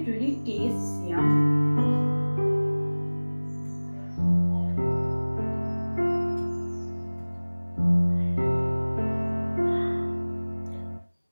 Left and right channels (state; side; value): inverted; both; correlation -1.00